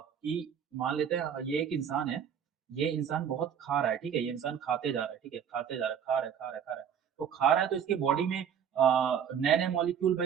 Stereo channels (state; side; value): quieter; left; 8.2 dB